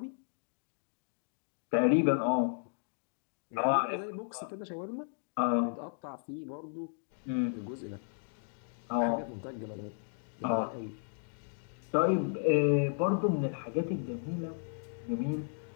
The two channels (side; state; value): right; silent; digital silence